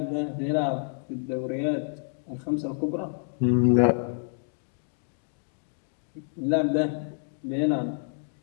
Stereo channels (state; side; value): silent; right; digital silence